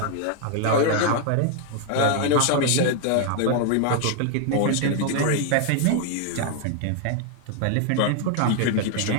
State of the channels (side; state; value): both; different; correlation 0.00